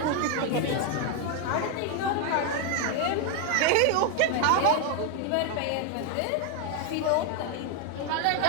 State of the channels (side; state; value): both; different; correlation 0.01